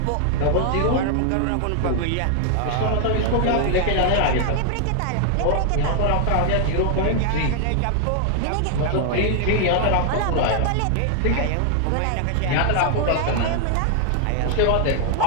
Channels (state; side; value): different; both; correlation 0.00